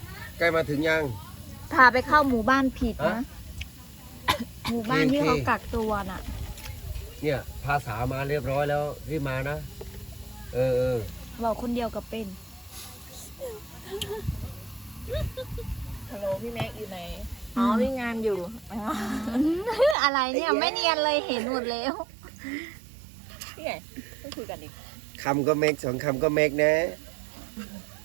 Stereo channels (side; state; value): left; drops out; at 20.0 s